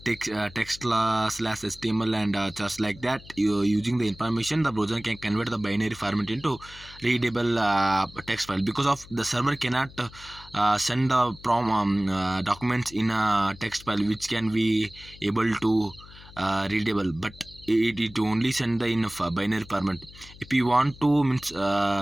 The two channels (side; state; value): left; noise; hum, 20 dB below the sound